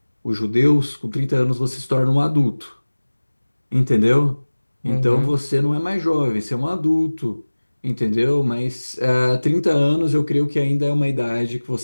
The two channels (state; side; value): inverted; both; correlation -1.00